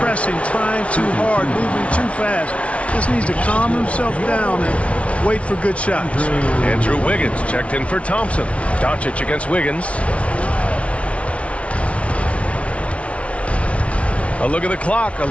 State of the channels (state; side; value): late; right; 0.063 ms